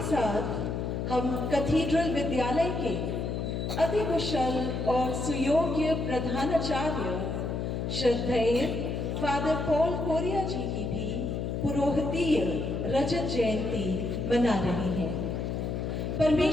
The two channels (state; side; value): noise; left; hum, 2 dB below the sound